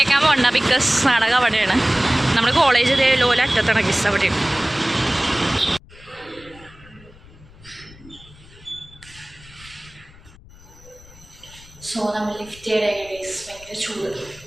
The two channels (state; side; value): noise; left; rumble, 23 dB below the sound